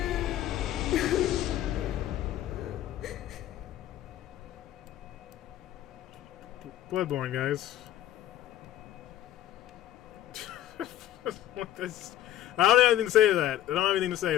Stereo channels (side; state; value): right; quieter; 12.8 dB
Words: Bloodborne, guys. I don't have anything to say to that. I don't have anything to say